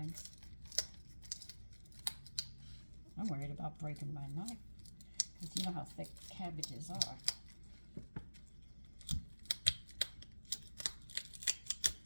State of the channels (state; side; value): inverted; both; correlation -1.00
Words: I'm worried about breaking my knife because you know how thick cabbages are.